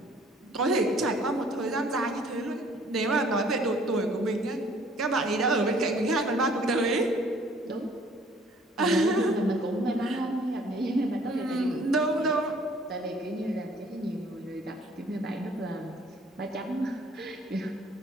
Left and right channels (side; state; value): both; normal; correlation 0.57